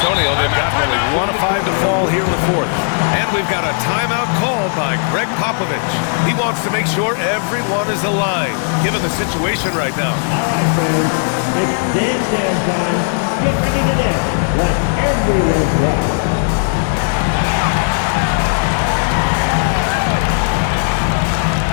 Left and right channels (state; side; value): silent; right; digital silence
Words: they've got only 1 of 5 to fall here in the fourth. And we've got a timeout called by Greg Popovich. He wants to make sure everyone is aligned, given the situation right now. All right, fans. It's dance time. Get ready to dance like everyone's right.